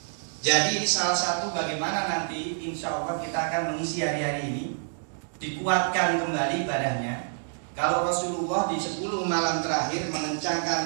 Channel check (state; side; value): silent; left; digital silence